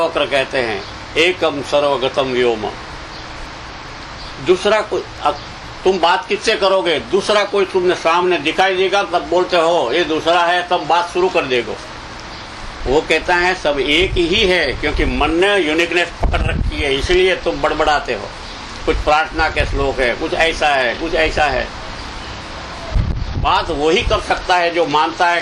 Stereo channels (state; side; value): identical; both; correlation 1.00